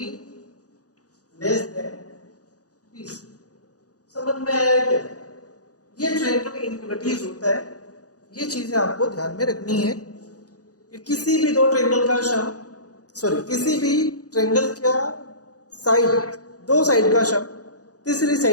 less than BC। समझ में आया क्या? ये ट्रायंगल इनइक्वालिटीज होता है, ये चीजें आपको ध्यान में रखनी है कि किसी भी दो ट्रायंगल का किसी भी ट्रायंगल का साइड, दो साइड का सम तीसरी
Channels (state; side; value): late; right; 0.67 ms